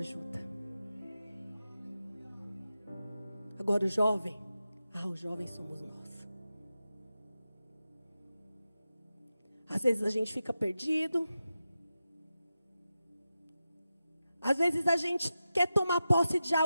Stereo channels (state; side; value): inverted; both; correlation -0.92